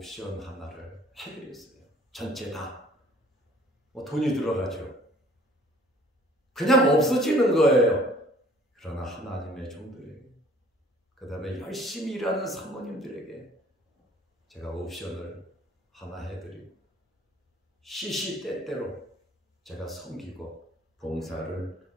하나를 해드렸어요. 전체 다. 돈이 들어가죠. 그냥 없어지는 거예요. 그러나 하나님의 종들에게, 그 다음에 열심히 일하는 사모님들에게 제가 옵션을 하나 해드리고 시시때때로 제가 섬기고 봉사를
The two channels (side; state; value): both; normal; correlation 0.54